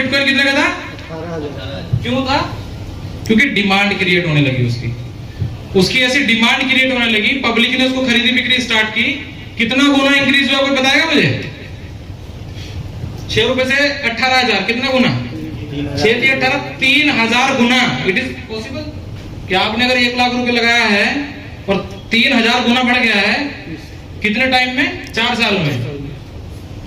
कितने का था? 18,000। क्यों था? क्योंकि डिमांड क्रिएट होने लगी उसकी ऐसी डिमांड क्रिएट होने लगी, पब्लिक ने उसको खरीदी बिक्री स्टार्ट की। कितना गुना इंक्रीज हुआ कोई बताएगा मुझे? 6 रुपए से 18,000, कितना गुना? 6 से 18, 3,000 गुना। इट इज पॉसिबल कि आपने अगर 1 लाख रुपए लगाया है और 3,000 गुना बढ़ गया है, कितने टाइम में? 4 साल में।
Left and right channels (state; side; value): identical; both; correlation 1.00